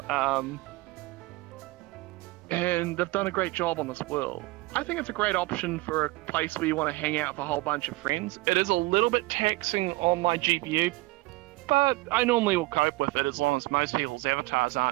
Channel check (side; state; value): left; quieter; 21.9 dB